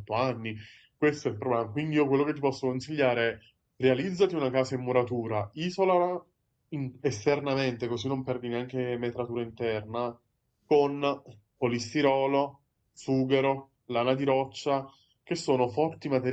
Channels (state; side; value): identical; both; correlation 1.00